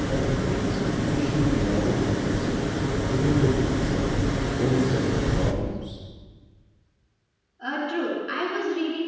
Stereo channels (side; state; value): both; identical; correlation 1.00